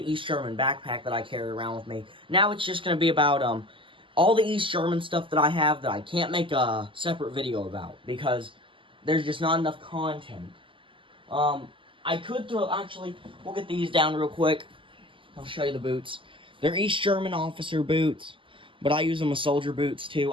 East German backpack that I carry around with me. Now it's just gonna be about all the East German stuff that I have that I can't make a separate video about because there's just not enough content. I could actually, we'll get these down real quick. I'll show you the boots. They're East German officer boots, but I use them as soldier boots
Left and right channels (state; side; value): late; left; 0.25 ms